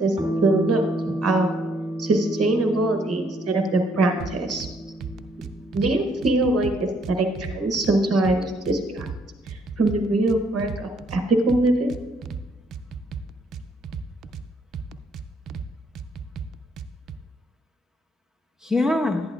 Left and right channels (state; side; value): normal; both; correlation 0.69